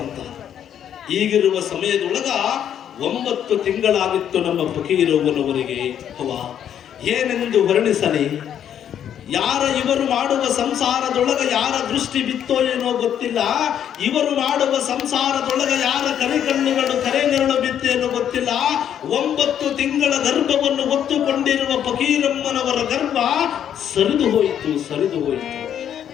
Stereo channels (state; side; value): quieter; right; 9.6 dB